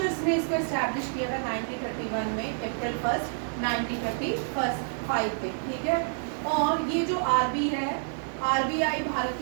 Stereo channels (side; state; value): left; silent; 59 dB below the other